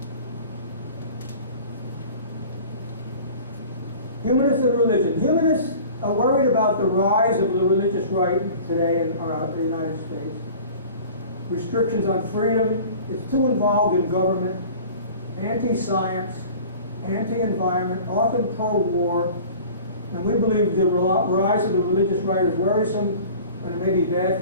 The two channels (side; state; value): both; inverted; correlation -0.43